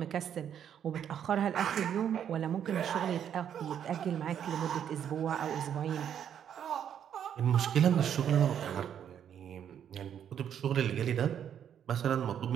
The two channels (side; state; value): left; quieter; 9.1 dB